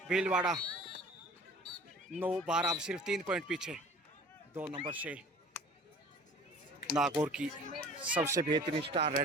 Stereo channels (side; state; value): both; normal; correlation 0.46